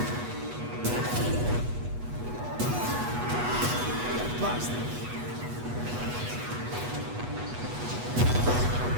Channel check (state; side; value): late; left; 8.2 ms